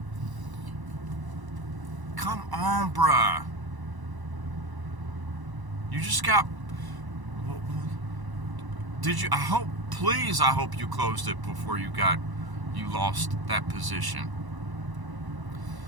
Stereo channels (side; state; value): left; late; 1.0 ms